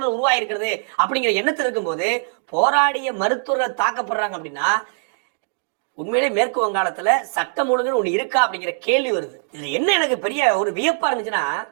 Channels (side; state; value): left; silent; digital silence